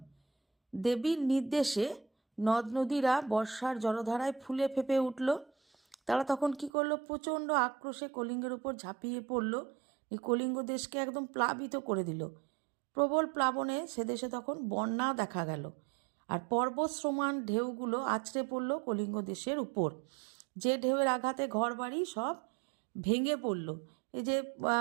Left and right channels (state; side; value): drops out; left; at 6.7 s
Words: দেবীর নির্দেশে নদ নদীরা বর্ষার জলধারায় ফুলে ফেঁপে উঠল। তারা তখন কি করলো? প্রচণ্ড আক্রোশে কলিঙ্গের উপর ঝাঁপিয়ে পড়ল। এই কলিঙ্গ দেশকে একদম প্লাবিত করে দিল। প্রবল প্লাবনে সে দেশে তখন বন্যা দেখা গেল। আর পর্বত সমান ঢেউগুলো আছড়ে পড়ল কলিঙ্গ দেশের উপর। যে ঢেউয়ের আঘাতে ঘরবাড়ি সব ভেঙে পড়ল। এই যে